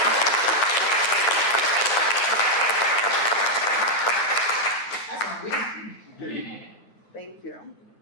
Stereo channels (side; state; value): right; late; 9.9 ms